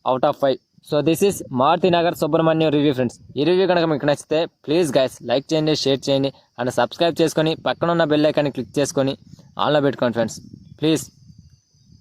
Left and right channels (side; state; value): both; identical; correlation 1.00